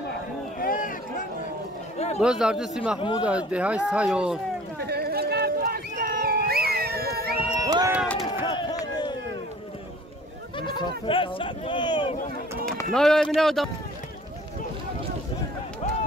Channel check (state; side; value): normal; both; correlation 0.50